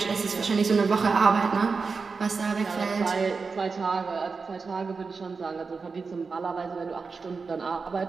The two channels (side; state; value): left; quieter; 4.7 dB